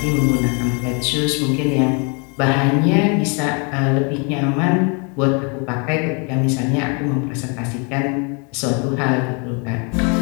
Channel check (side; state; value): right; quieter; 34.4 dB